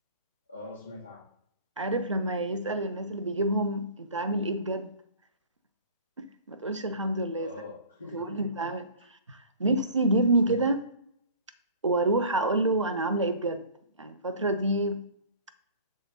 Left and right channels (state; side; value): inverted; both; correlation -0.44